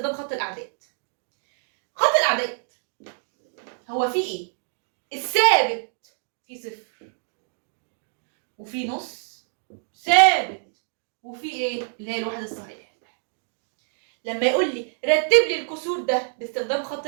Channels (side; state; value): left; silent; digital silence